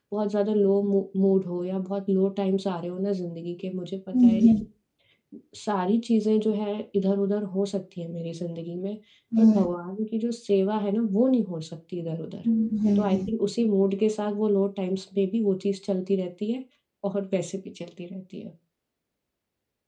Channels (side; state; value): both; identical; correlation 1.00